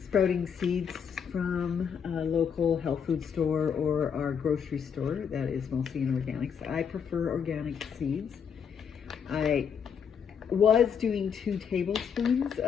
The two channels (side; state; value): right; quieter; 7.2 dB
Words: sprouting seeds from a local health food store or our grocery store that is mostly in organics. I prefer organic seeds. I was doing 2 tablespoons